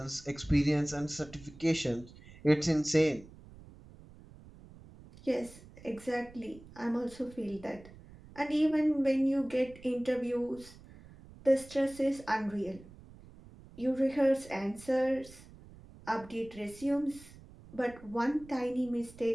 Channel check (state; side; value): noise; right; rumble, 20 dB below the sound